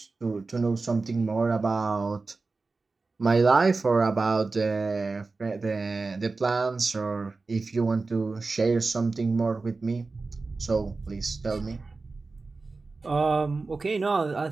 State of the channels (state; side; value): quieter; left; 3.8 dB